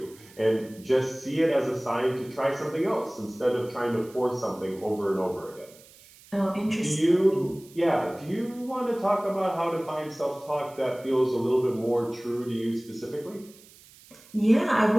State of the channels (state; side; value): noise; right; hiss, 24 dB below the sound